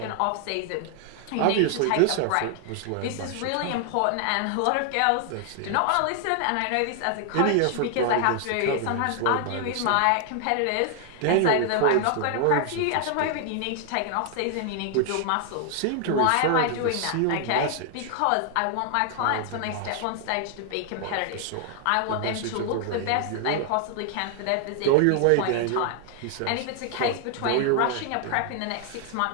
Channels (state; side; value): different; both; correlation 0.00